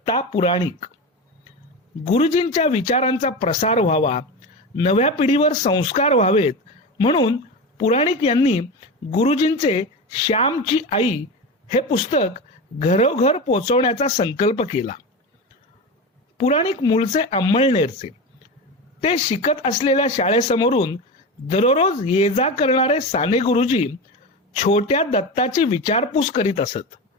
पुराणिक। गुरुजींच्या विचारांचा प्रसार व्हावा, नव्या पिढीवर संस्कार व्हावेत म्हणून पुराणिक यांनी गुरुजींचे श्यामची आई हे पुस्तक घरोघर पोचवण्याचा संकल्प केला। पुराणिक मूळचे अंमळनेरचे, ते शिकत असलेल्या शाळेसमोरून दररोज ये जा करणारे साने गुरुजी छोट्या दत्ताची विचारपूस करीत असत।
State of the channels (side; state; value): both; normal; correlation 0.23